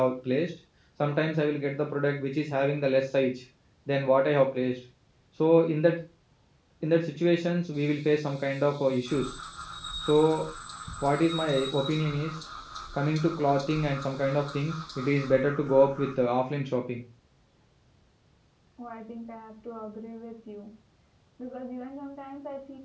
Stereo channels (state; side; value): identical; both; correlation 1.00